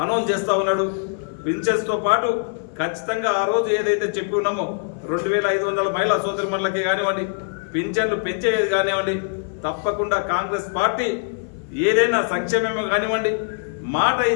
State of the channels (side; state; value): right; silent; 58 dB below the other